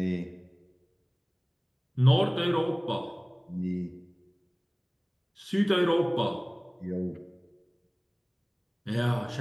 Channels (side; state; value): both; identical; correlation 1.00